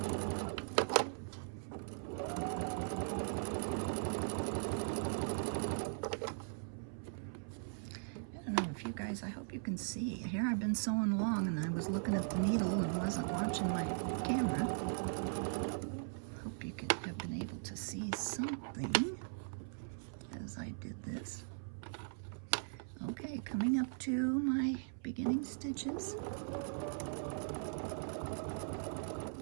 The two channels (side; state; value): left; silent; 51 dB below the other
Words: guys, I hope you can see. Here I've been sewing along and I was looking at the needle and wasn't watching my camera. Hope you have been able to see something as I did this. Okay, coming up to my beginning stitches.